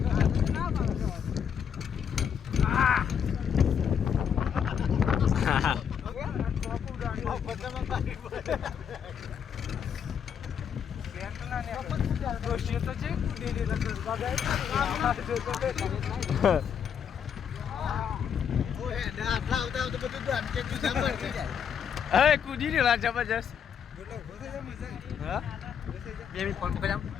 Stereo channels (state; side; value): quieter; right; 7.8 dB